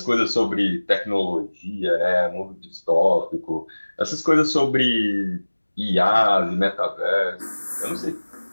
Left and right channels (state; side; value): inverted; both; correlation -1.00